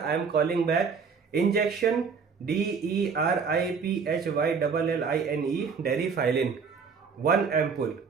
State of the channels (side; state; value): left; quieter; 5.6 dB